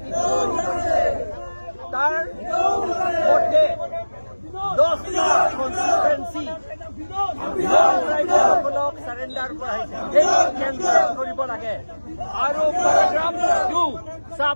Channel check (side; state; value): both; inverted; correlation -1.00